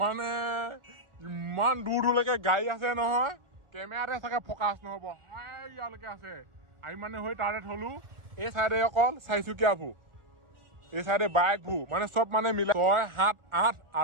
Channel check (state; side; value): late; left; 1.4 ms